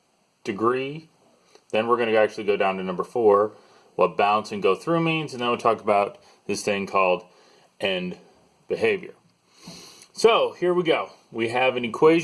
degree. Then we're going to actually go down to number 4, what bounce and go through means, and then we'll talk about this thing called end behavior. So here we go. We have an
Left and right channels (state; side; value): identical; both; correlation 1.00